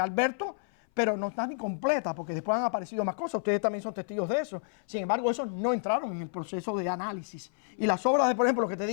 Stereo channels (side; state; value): right; silent; 57 dB below the other